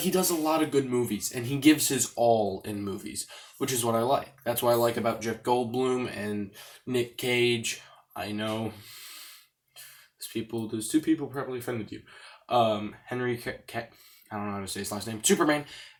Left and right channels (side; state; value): both; identical; correlation 1.00